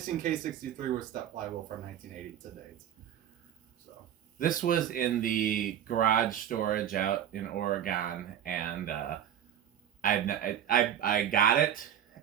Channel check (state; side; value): quieter; left; 10.2 dB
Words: K-63 with step flywheel from 1980 to date. So this was in the garage storage out in Oregon, and I got it